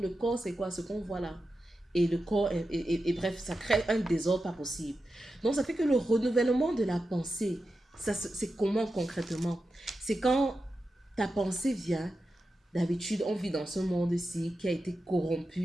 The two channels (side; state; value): both; normal; correlation 0.91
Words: le corps, c'est quoi? Ce qu'on voit là. Et le corps, et bref, ça crée un désordre pas possible. Donc ça fait que le renouvellement de la pensée, c'est comment concrètement? C'est quand ta pensée vient, d'habitude on vit dans ce monde-ci qui a été